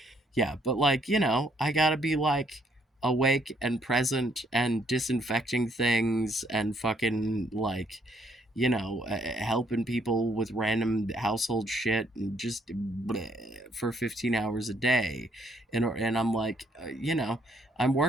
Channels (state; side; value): normal; both; correlation 0.69